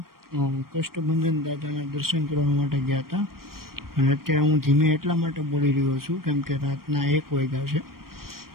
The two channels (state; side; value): late; left; 0.93 ms